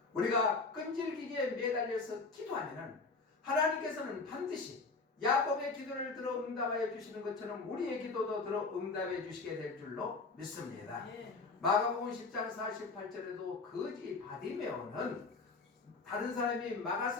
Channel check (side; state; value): right; quieter; 4.1 dB